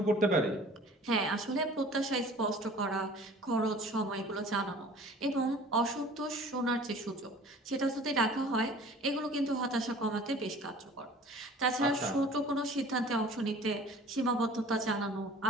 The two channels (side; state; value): both; normal; correlation 0.47